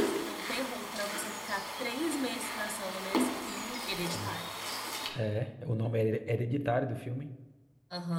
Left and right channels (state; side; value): identical; both; correlation 1.00